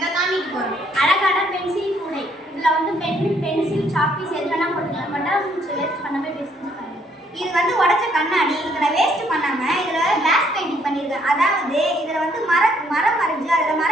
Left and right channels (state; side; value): normal; both; correlation 0.68